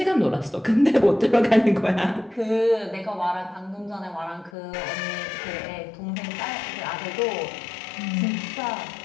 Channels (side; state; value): right; drops out; at 4.5 s